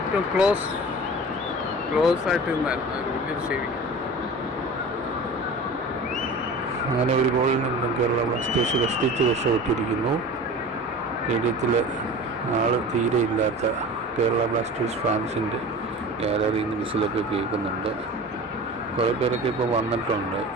ഏറ്റവും ക്ലോസ് ആയിട്ട് നിന്നായിരുന്നു. അത് വലിയൊരു സേവിങ്. അങ്ങനെ ഒരു ഗോളിൽ നിന്നും കേരള ബ്ലാസ്റ്റേഴ്സ് കഷ്ടിച്ച് രക്ഷപ്പെട്ടിരിക്കുന്നു. സ്റ്റേഡിയത്തിൽ ആൾ തീരെ ഇല്ലാത്ത കേരള ബ്ലാസ്റ്റേഴ്സ് ഫാൻസിൻ്റെ ഗാലറിയിൽ നിന്ന് വിസിലൊക്കെ കേൾക്കുന്നുണ്ട്. കുറേ പേരൊക്കെ ഇപ്പോൾ വന്നിട്ടുണ്ട്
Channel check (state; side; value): normal; both; correlation 0.36